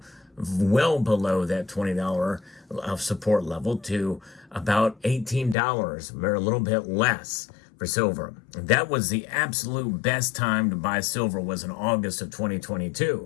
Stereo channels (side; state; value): right; drops out; at 5.6 s